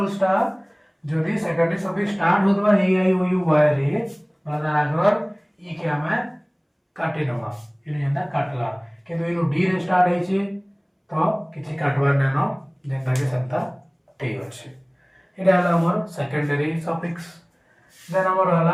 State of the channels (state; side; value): identical; both; correlation 1.00